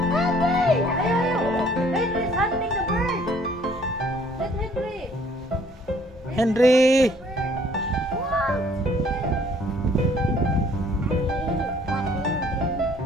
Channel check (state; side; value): normal; both; correlation 0.59